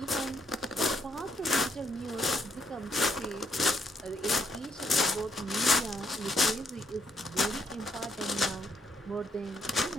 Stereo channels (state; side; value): normal; both; correlation 0.73